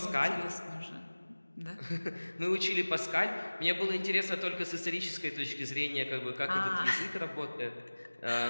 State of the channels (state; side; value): inverted; both; correlation -1.00